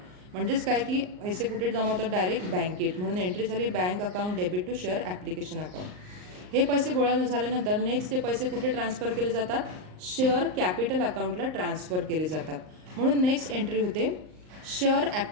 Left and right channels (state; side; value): late; left; 38 ms